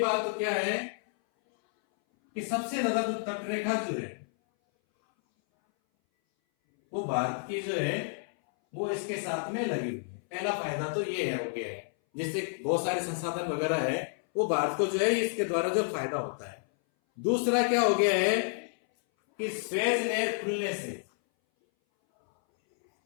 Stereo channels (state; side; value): silent; right; 58 dB below the other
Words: तो क्या है कि सबसे ज्यादा जो तटरेखा जो है वो भारत की जो है वो इसके साथ में लगी हुई है। पहला फायदा तो ये है, हो गया है, जिससे बहुत सारे संसाधन वगैरह है वो भारत को जो है इसके द्वारा जो फायदा होता है। दूसरा क्या हो गया है कि स्वेज नहर खुलने से